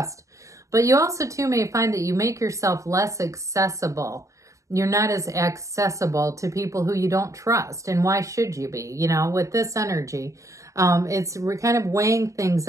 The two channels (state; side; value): late; left; 0.15 ms